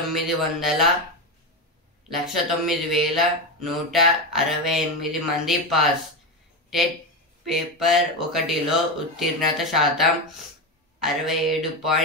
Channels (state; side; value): normal; both; correlation 0.15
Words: మంది పాస్. టెట్ పేపర్ 1లో ఉత్తీర్ణత శాతం